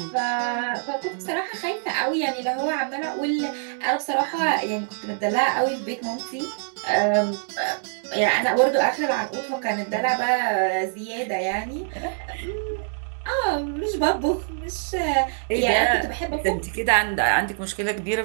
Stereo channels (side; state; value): left; silent; digital silence